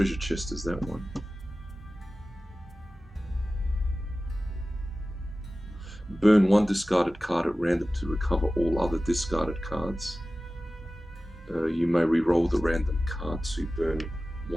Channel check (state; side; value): normal; both; correlation 0.96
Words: chest is that one. Burn 1 discarded card at random to recover all other discarded cards. You may re-roll the random card to burn